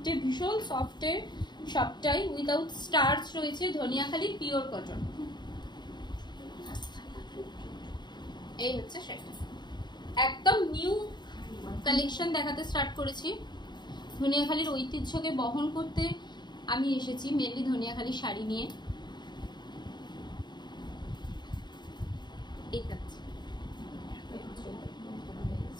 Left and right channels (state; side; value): late; right; 0.21 ms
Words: ভীষণ সফটে সবটাই, উইদাউট স্টার্চ রয়েছে, ধনিয়াখালি পিওর কটন। এই হচ্ছে সেটা, একদম নিউ কালেকশন দেখাতে স্টার্ট করেছি। ধনিয়াখালির ঐতিহ্যকে বহন করতে আমি এসেছি, মেনলি ধনিয়াখালি শাড়ি নিয়ে। এই থাকছে